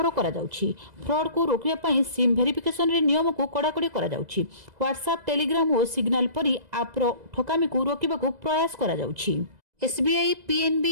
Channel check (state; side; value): late; left; 2.0 ms